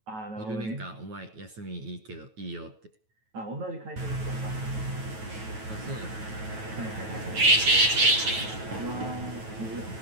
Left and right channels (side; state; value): left; late; 9.2 ms